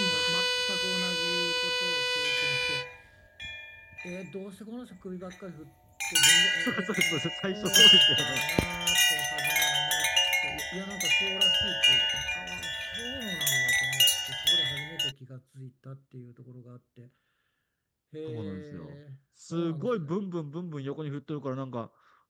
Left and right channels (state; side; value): identical; both; correlation 1.00